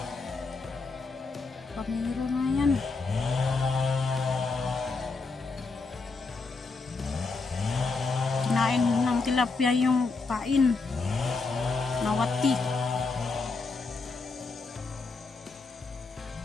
Pamiro na yan. Kinain ng tilapia yung pain. Nawati.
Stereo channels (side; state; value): right; quieter; 4.0 dB